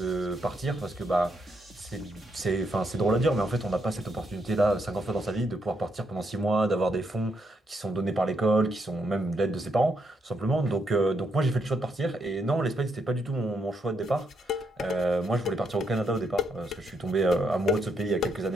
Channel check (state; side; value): normal; both; correlation 0.78